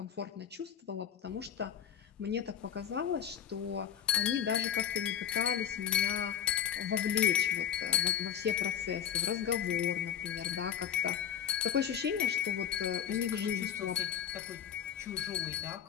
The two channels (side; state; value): right; quieter; 9.2 dB